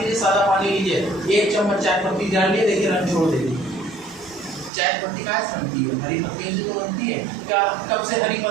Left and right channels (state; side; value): drops out; left; at 4.7 s